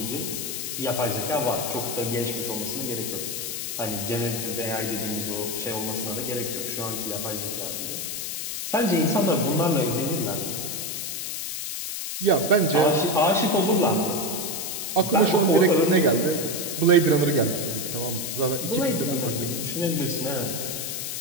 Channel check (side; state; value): left; noise; hiss, 4 dB below the sound